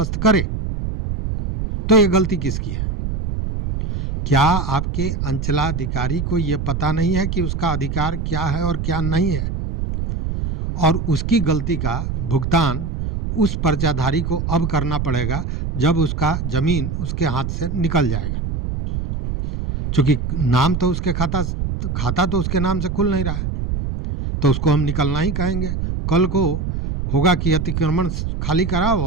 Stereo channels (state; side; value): noise; right; rumble, 3 dB below the sound